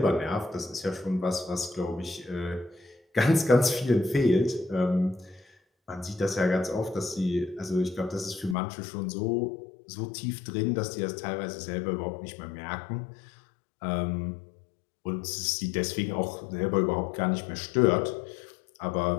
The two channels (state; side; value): drops out; right; at 8.6 s